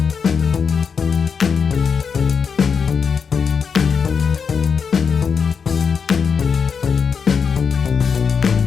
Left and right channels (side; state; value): right; quieter; 6.2 dB